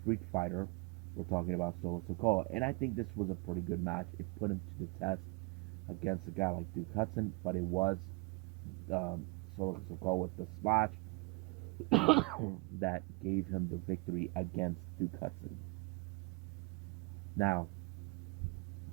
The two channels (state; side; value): quieter; left; 28.7 dB